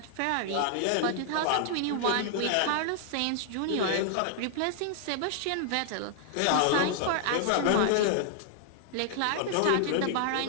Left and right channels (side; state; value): both; different; correlation 0.00